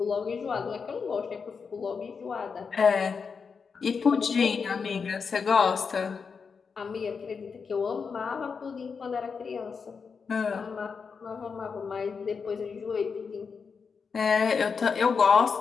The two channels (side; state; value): right; quieter; 5.6 dB